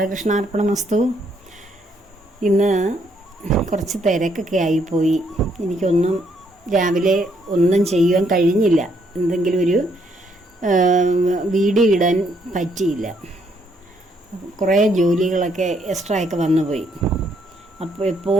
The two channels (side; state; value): both; normal; correlation 0.71